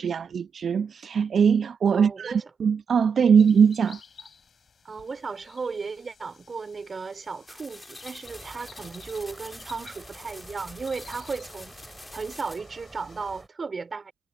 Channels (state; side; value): quieter; left; 6.1 dB